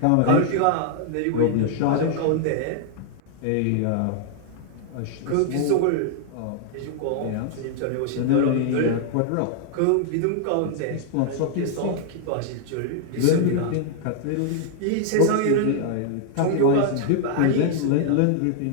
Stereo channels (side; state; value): both; different; correlation 0.00